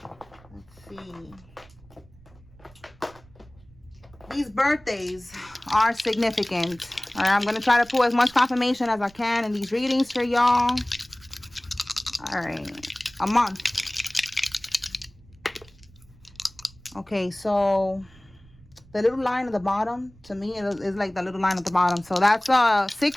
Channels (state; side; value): noise; right; rumble, 25 dB below the sound